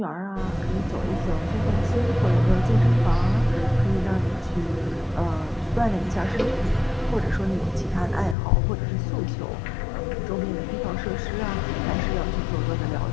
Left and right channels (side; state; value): right; drops out; at 8.3 s